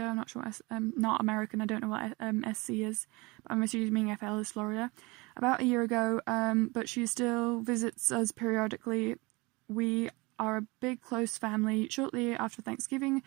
I'm not sure, not American, I don't know what SC is, but I'm assuming FL is Florida. About a year ago, but she still visits us periodically. We are a big, close family. Shortly after Thanksgiving,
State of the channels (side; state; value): left; quieter; 24.9 dB